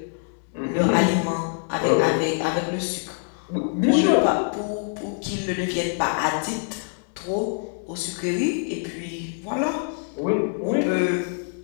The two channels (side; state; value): right; silent; 60 dB below the other